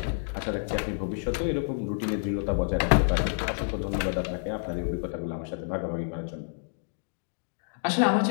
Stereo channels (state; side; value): silent; right; digital silence